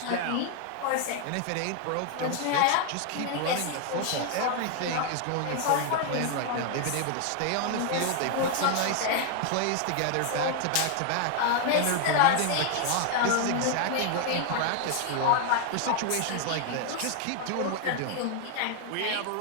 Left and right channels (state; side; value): different; both; correlation 0.00